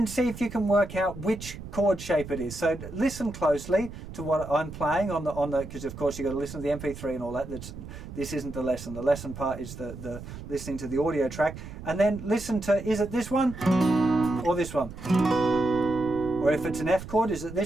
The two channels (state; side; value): noise; right; rumble, 12 dB below the sound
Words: see if you can work out which chord shape it is. So listen closely to what I'm playing on the because of course you've got to listen to the MP3 and all that. This isn't the lesson. The lesson part is the listening to the audio track, and then listen to, is it this one or this one? Or if it's an F chord, is it